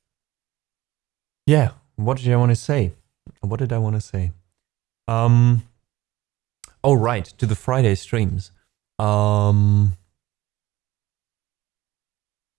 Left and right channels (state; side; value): quieter; left; 17.1 dB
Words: Yeah, what did I want to say? What did I want to say? Oh, right, to the Friday streams. I